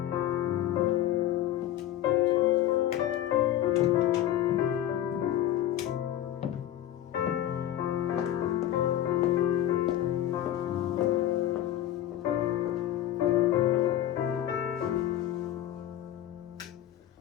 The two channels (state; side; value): quieter; right; 12.3 dB